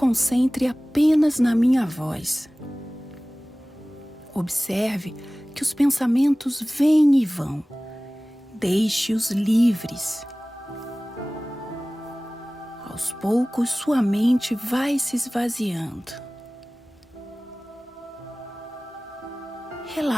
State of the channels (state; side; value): normal; both; correlation 0.98